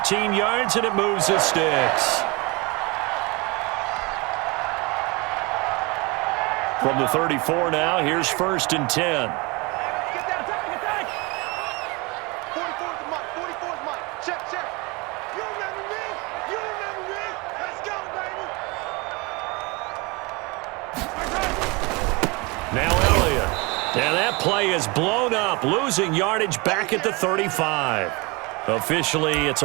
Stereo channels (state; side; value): quieter; left; 26.7 dB